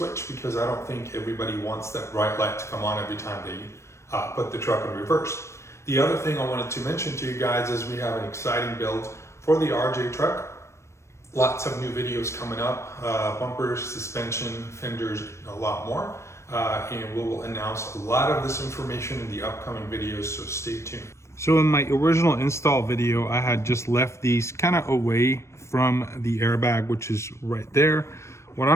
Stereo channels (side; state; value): right; late; 0.13 ms